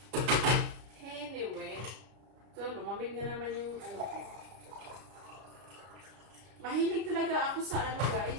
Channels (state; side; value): late; left; 33 ms